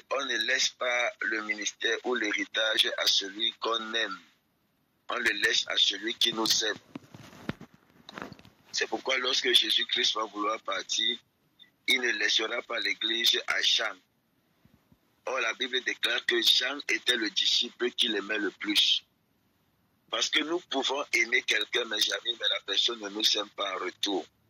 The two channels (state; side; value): identical; both; correlation 1.00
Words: ne laisse pas le ministère ou l'héritage à celui qu'on aime. On le laisse à celui qui nous aime. C'est pourquoi lorsque Jésus-Christ va vouloir partir, il ne laissera pas l'église à Jean. Or, la Bible déclare que Jean était le disciple qu'il aimait le plus. Parce que nous pouvons aimer quelqu'un, mes amis, mais la personne ne nous aime pas en retour.